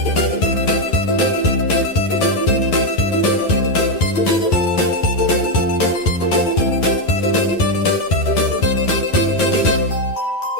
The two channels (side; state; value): right; late; 11 ms